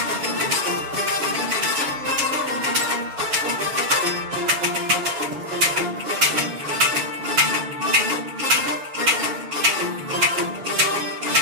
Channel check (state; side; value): late; left; 7.1 ms